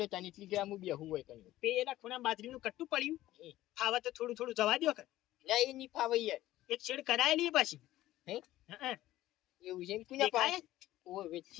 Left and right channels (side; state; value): right; quieter; 15.2 dB